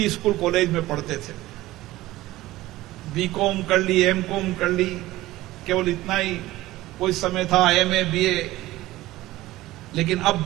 स्कूल कॉलेज में पढ़ते थे, बीकॉम कर ली, एमकॉम कर ली, केवल इतना ही कोई समय था, एमए, बीए। लेकिन अब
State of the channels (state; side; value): quieter; left; 17.0 dB